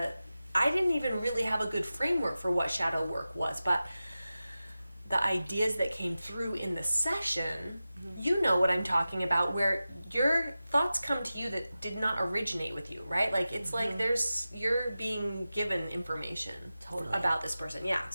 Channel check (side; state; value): both; inverted; correlation -0.94